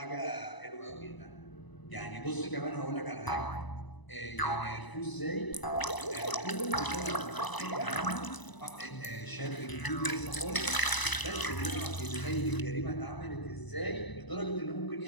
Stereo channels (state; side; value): late; right; 1.0 ms